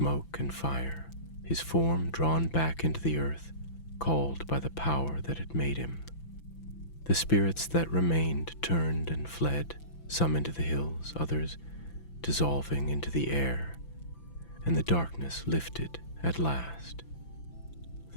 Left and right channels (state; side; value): late; right; 5.9 ms